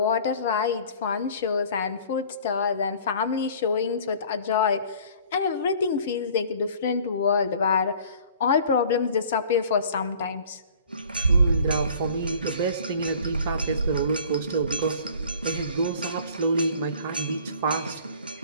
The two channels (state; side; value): inverted; both; correlation -0.50